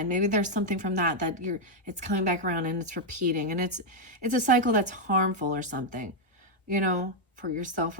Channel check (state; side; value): normal; both; correlation 0.00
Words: maybe there's something from that it's coming back around and it's repeating, and it's a cycle that's harmful or something, for yourself